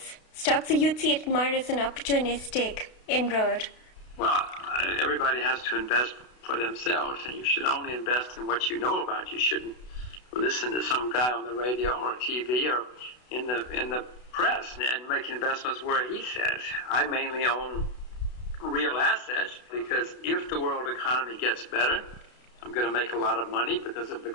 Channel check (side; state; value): right; late; 32 ms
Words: stocks? So you'd see it more as an opportunistic inroad. Well, everybody has to invest for themselves, and you should only invest in what you know about. You shouldn't listen to some guy on the radio or TV or in the press and make investments where he says. I mainly own real assets because if the world economy gets better, I'm going to make a lot of money because of the